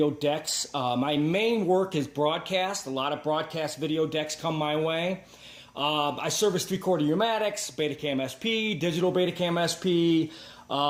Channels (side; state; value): both; identical; correlation 1.00